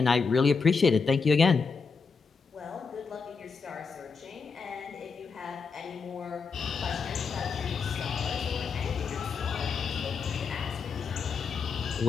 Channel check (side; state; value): right; quieter; 5.1 dB